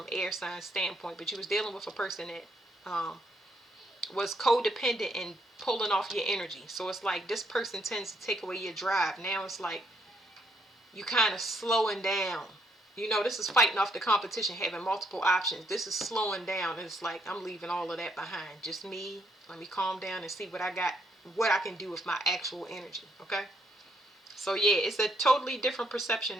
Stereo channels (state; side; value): normal; both; correlation 0.73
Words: air sign standpoint. But you was dealing with a person that was codependent and pulling off your energy. So it's like this person tends to take away your drive. Now it's like you kind of slowing down. You know, this is fighting off the competition, having multiple options. This is slowing down. It's like I'm leaving all of that behind. Just me. Let me calm down and see what I got, what I can do with my actual energy. Okay? So yeah, it's a totally different